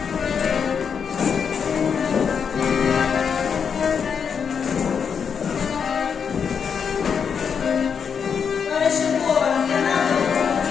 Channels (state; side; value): quieter; right; 6.7 dB